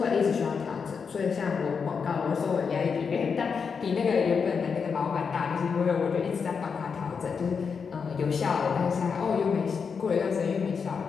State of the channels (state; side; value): quieter; right; 5.9 dB